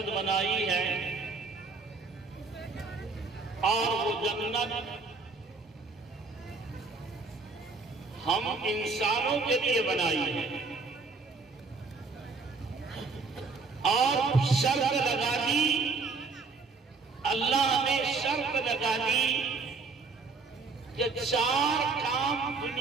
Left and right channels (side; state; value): left; quieter; 4.2 dB